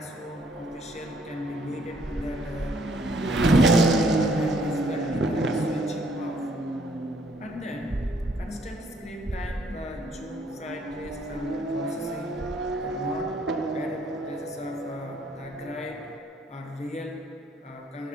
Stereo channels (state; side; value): normal; both; correlation 0.65